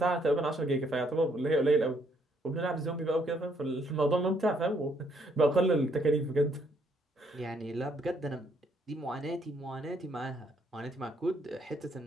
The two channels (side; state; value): both; normal; correlation 0.70